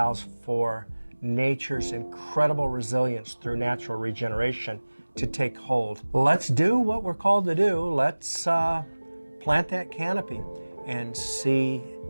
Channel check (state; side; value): inverted; both; correlation -1.00